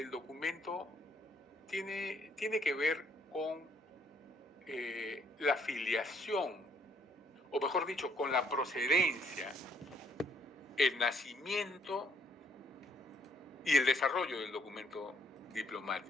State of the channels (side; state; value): both; normal; correlation 0.67